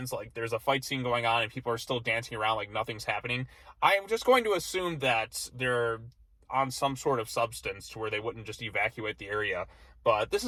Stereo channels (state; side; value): identical; both; correlation 1.00